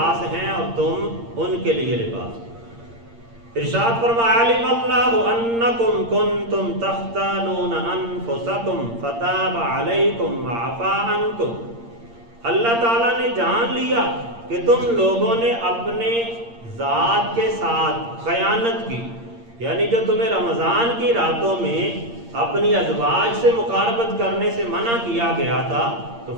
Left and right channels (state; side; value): late; left; 8.7 ms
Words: ہیں اور تم ان کے لیے لباس ہو۔ ارشاد فرمایا علم اللہ انکم کنتم تختانون انفسکم فتاب علیکم وعفا عنکم، اللہ تعالیٰ نے جان لیا کہ تم لوگوں نے اپنے ذات کے ساتھ خیانت کی، یعنی جو تمہیں رمضان کی راتوں میں اپنی ازواج سے مقاربت کرنے سے منع کیا گیا تھا، تو